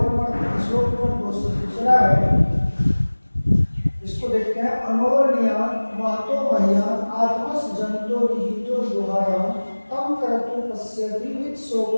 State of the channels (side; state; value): both; inverted; correlation -1.00